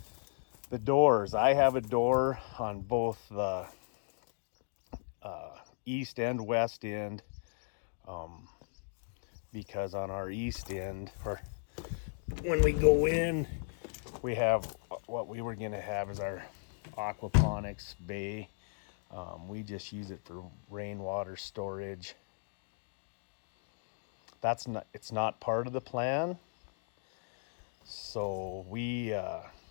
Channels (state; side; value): silent; right; digital silence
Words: The doors, I have a door on both the east and west end, because on our east end, or when we go in, we have what we were gonna have is our aquaponics bay. We just use it for rainwater storage. It's not part of the plan. So we